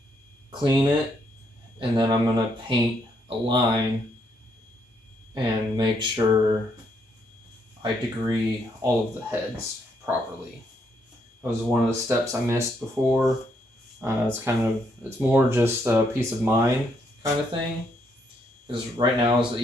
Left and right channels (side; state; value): both; normal; correlation 0.74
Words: clean it, and then I'm going to paint a line and make sure I degree all of the heads properly. That was one of the steps I missed before. It's more just a peace of mind kind of thing, because right now is the